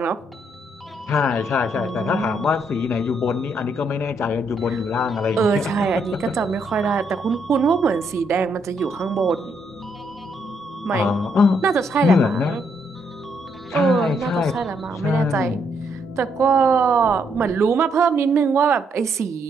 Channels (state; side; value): normal; both; correlation 0.74